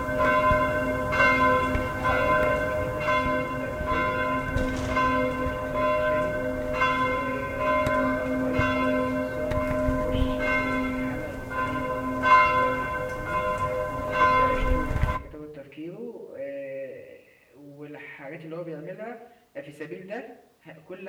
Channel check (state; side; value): identical; both; correlation 1.00